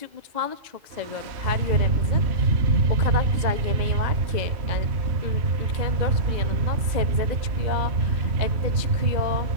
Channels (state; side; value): late; left; 2.0 ms